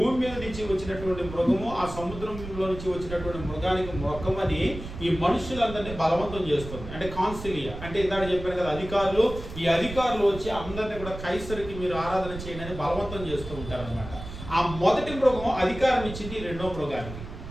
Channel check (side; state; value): right; noise; rumble, 11 dB below the sound